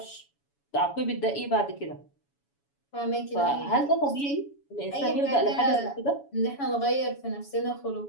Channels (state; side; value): late; right; 7.1 ms